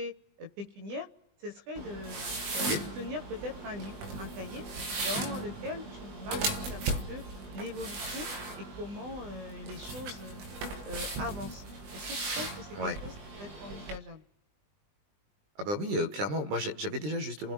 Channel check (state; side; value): late; left; 20 ms